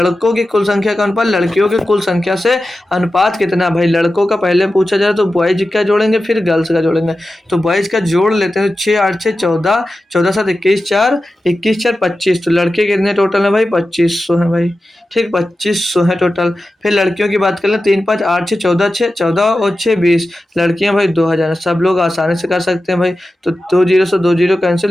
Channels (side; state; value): both; normal; correlation 0.93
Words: की कुल संख्या का अनुपात लड़कियों की कुल संख्या से अनुपात कितना। भाई लड़कों का पहले पूछा जाए तो बॉयज का जोड़ेंगे फिर गर्ल्स का जोड़ेंगे। तो बॉयज का जोड़ लेते हैं, 6 8 6 14, 14 7 21 4, 21 4 25। तो लड़के कितने टोटल है भाई, 2500 है भाई। ठीक, 2500 है टोटल। फिर लड़कियों की बात कर लें, 3 5 8 6 14, 6 14 और 6 20। लड़कियां भाई 2000। सब लोग आसानी से कर सकते हैं भाई। तो 2 जीरो से 2 जीरो